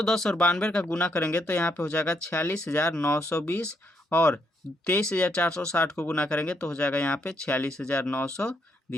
और 92 का गुना करेंगे तो यहाँ पे हो जाएगा 46,920 और 23,460 को गुना करेंगे तो हो जाएगा यहाँ पे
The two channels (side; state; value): both; normal; correlation 0.75